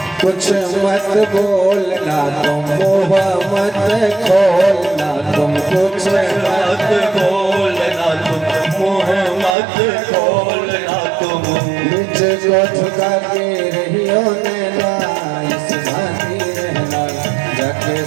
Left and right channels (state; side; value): drops out; left; at 9.6 s